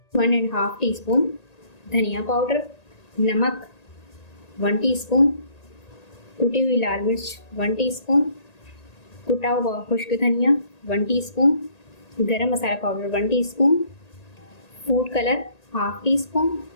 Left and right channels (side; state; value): right; late; 1.8 ms